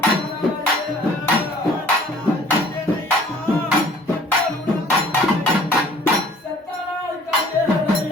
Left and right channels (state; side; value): normal; both; correlation 0.53